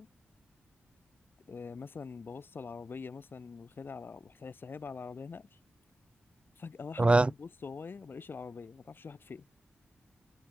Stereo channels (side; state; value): both; normal; correlation 0.94